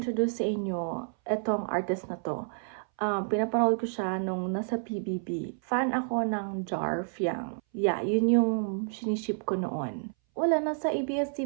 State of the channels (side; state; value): left; silent; 58 dB below the other